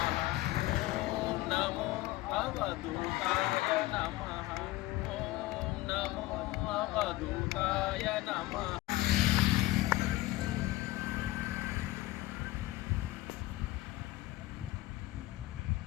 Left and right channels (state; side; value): quieter; right; 18.1 dB